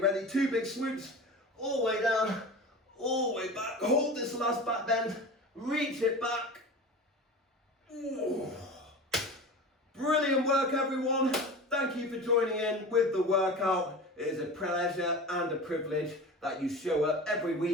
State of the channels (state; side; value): normal; both; correlation 0.33